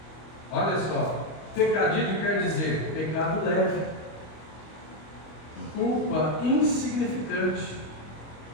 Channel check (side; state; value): right; late; 25 ms